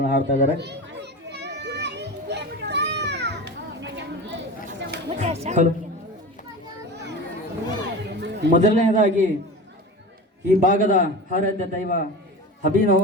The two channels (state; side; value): normal; both; correlation 0.30